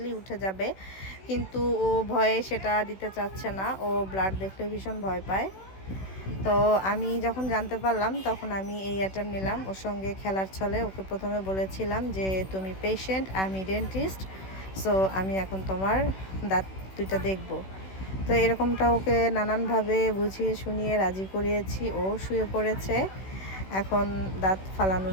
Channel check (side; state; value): right; late; 16 ms